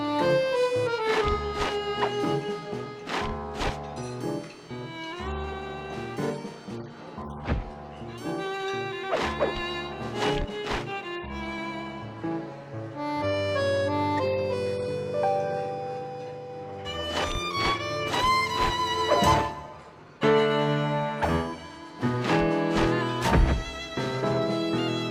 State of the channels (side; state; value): both; identical; correlation 1.00